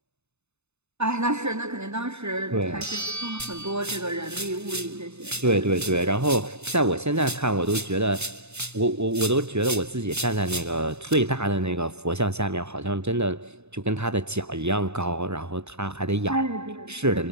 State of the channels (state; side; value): late; left; 0.81 ms